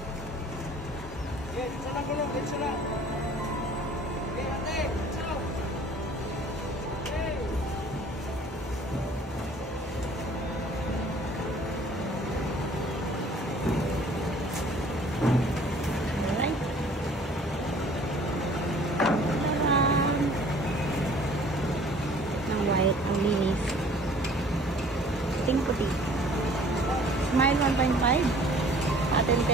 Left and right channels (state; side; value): normal; both; correlation 0.52